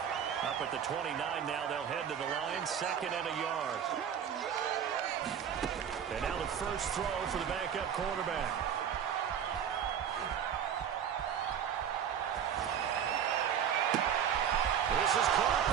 Up at the 29 now, they'll head to the line. 2nd and a yard. And now the first throw for the backup quarterback. This is caught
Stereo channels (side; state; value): left; quieter; 8.5 dB